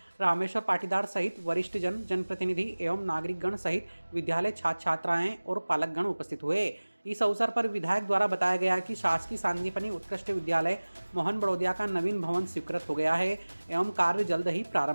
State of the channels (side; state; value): both; inverted; correlation -1.00